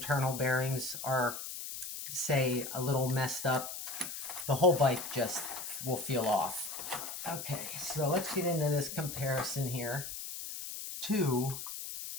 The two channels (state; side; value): noise; left; hiss, 7 dB below the sound